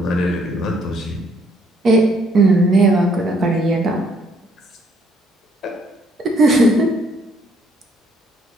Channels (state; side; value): normal; both; correlation 0.67